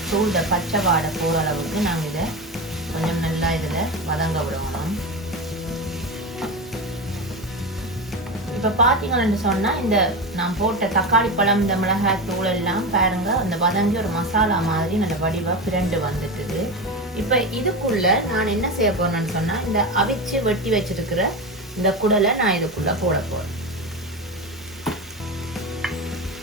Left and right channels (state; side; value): normal; both; correlation 0.21